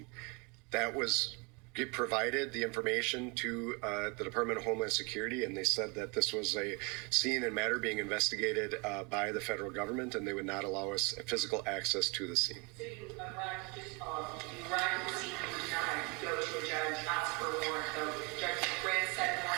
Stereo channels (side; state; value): left; quieter; 30.5 dB